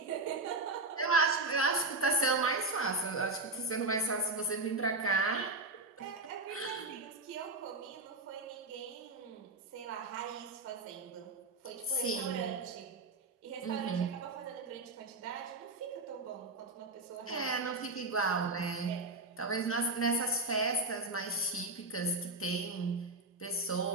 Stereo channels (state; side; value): quieter; left; 3.2 dB